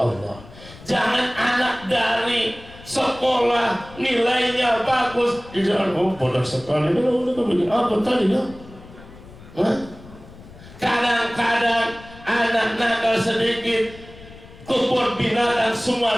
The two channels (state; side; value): noise; left; rumble, 19 dB below the sound